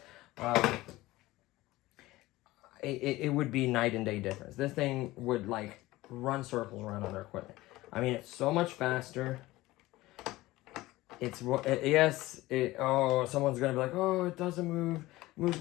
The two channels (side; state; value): right; quieter; 18.4 dB